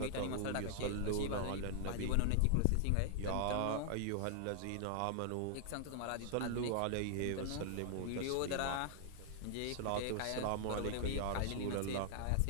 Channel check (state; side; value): different; both; correlation -0.01